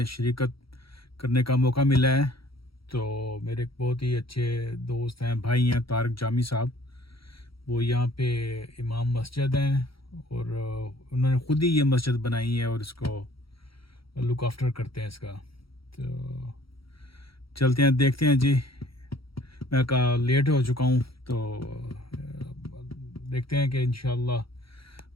شرکت کرنے کا موقع ملا ہے. تو میرے ایک بہت ہی اچھے دوست ہیں، بھائی ہیں، طارق جامی صاحب. وہ یہاں پہ امام مسجد ہیں اور انہوں نے خود ہی یہ مسجد بنائی ہے اور اس کو لک آفٹر کرتے ہیں اس کا. تو چلتے ہیں، دیکھتے ہیں. جی میں لیٹ ہو چکا ہوں، تو دیکھتے ہیں کہ انشاءاللہ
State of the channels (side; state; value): right; late; 0.75 ms